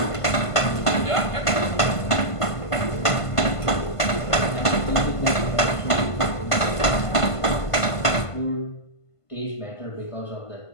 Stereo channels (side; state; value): right; late; 1.5 ms